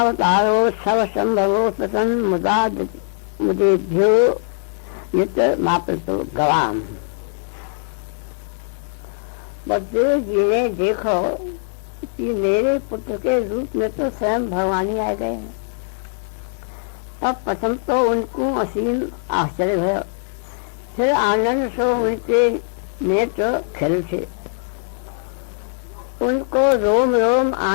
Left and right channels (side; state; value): right; silent; 58 dB below the other